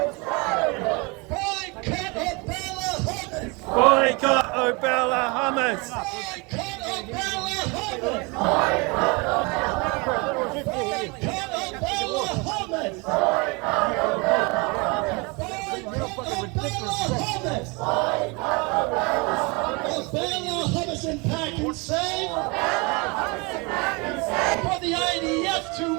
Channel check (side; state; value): left; quieter; 28.7 dB